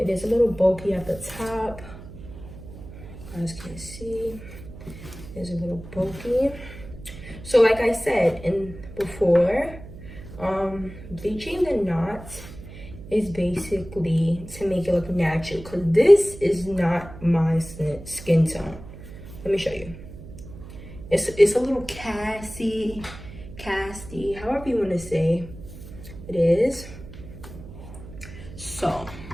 is a little bulky at the top. You guys can see it's a little bulky. So like I said before, bleaching the knots is basically to make it look natural, because this is not my skin tone. Let me show you. It's a little casty, however you want to say it is. So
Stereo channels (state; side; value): noise; right; hum, 15 dB below the sound